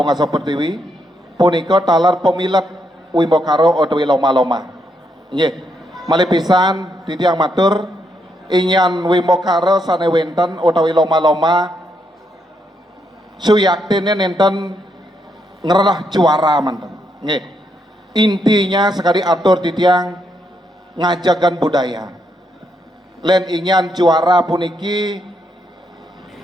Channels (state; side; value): normal; both; correlation 0.78